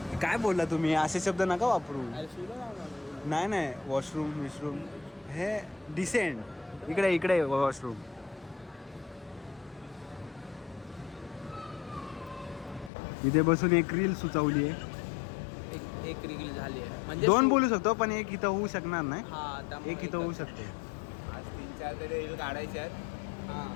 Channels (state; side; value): drops out; right; at 12.9 s